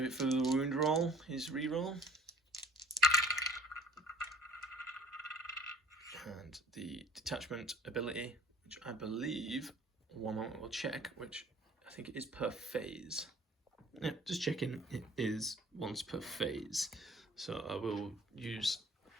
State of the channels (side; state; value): both; normal; correlation 0.51